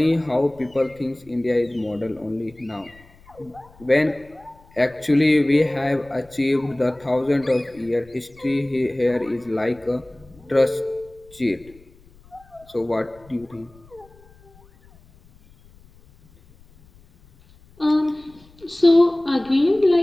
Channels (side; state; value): left; noise; rumble, 27 dB below the sound